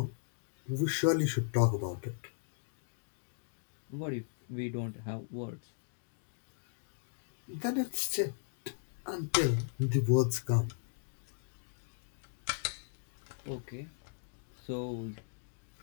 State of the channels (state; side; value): silent; right; digital silence